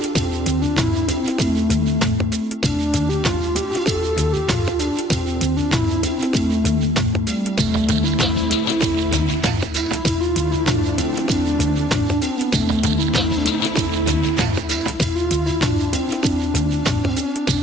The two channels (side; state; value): both; normal; correlation 0.62